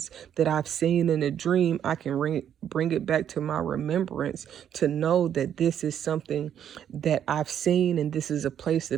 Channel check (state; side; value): quieter; left; 9.5 dB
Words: that I've seen in a dream, I can bring it back to my remembrance to know that this is something that I've seen and this is a place